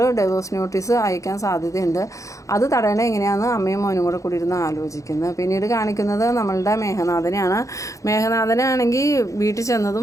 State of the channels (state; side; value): late; right; 0.15 ms